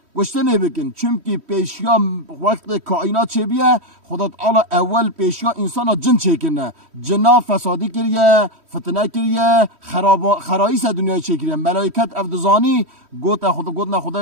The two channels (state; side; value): late; left; 3.1 ms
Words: گشتنه بکن، چونکی پیشیا وقت کائنات چه بیه خدا تعالی اول پیشیا انسان جن چکنه، جنا فسادی کریه، فتنه کریه، خراییس دنیای چه کریه. ملائکت افدزانی گوتنا